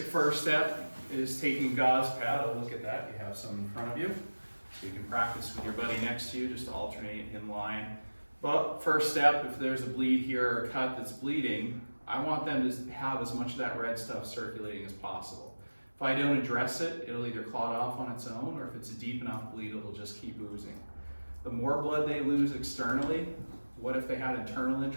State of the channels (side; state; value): both; inverted; correlation -1.00